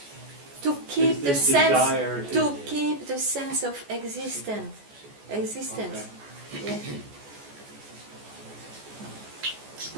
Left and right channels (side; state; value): left; late; 14 ms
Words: To keep Is the this desire sense, to- to keep the sense of existence. Existence. Yeah.